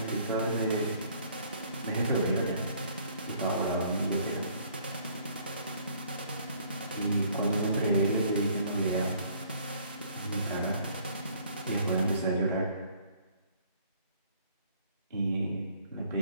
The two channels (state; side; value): inverted; both; correlation -0.60